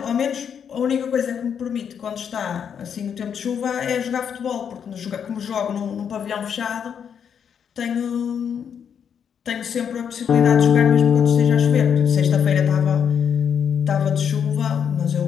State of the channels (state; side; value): quieter; right; 7.8 dB